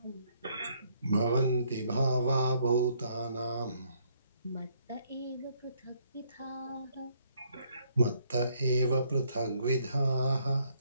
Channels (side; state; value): both; inverted; correlation -0.68